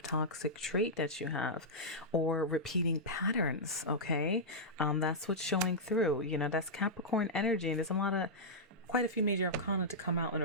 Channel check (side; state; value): both; normal; correlation -0.10